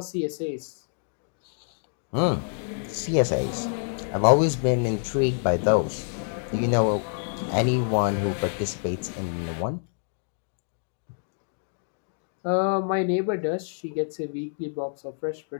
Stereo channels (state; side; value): silent; right; 60 dB below the other